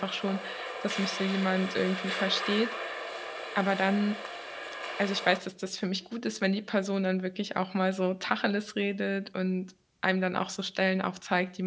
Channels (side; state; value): both; identical; correlation 1.00